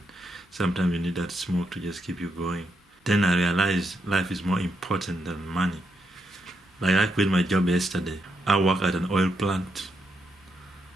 sometimes you need that smoke to just keep you going. Then I realized life is more important than money. Like I quit my job yesterday. I work at an oil plant,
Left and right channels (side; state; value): both; normal; correlation 0.81